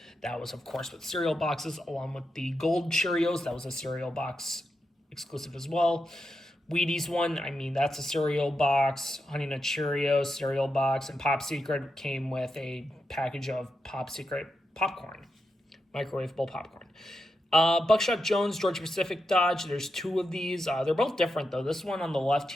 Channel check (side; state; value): both; normal; correlation 0.87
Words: That was, of course, with cereal boxes, along with the Gold Cheerios. That was a cereal box exclusive as well. Wheaties one, I mean, that's a cereal box. Honey Nut Cheerios, cereal box. And Pop Secret came with a package of Pop Secret popcorn, microwavable popcorn. Buckshot Jones, Georgia Pacific Dodge. There's two of these. They're both different, though. This one on the left